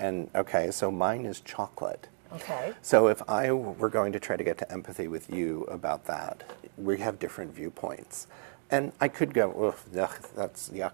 okay, so mine is chocolate. Okay. So if I were going to try to get to empathy with you about that, we have different viewpoints. And I could go, ugh, that's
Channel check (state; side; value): silent; left; digital silence